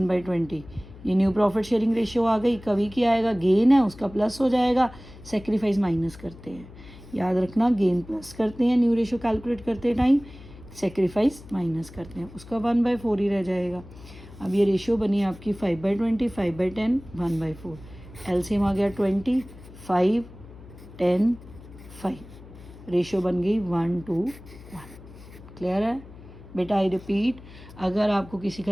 ये न्यू प्रॉफिट शेयरिंग रेशियो आ गई। कवि की आएगा, गेन है उसका प्लस हो जाएगा, सेक्रीफाइस माइनस करते हैं, याद रखना, गेन प्लस करते हैं न्यू रेशो कैलकुलेट करते टाइम, सेक्रीफाइस माइनस करते हैं, उसका 1/4 ही रह जाएगा। अब ये रेशियो बनी आपकी 5/20, 5/10, 1/4। एलसीएम आ गया 20, 5, 10, 5। रेशियो बन गई 1:1। क्लियर है बेटा? आई रिपीट, अगर आपको किसी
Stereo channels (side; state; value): left; noise; hum, 18 dB below the sound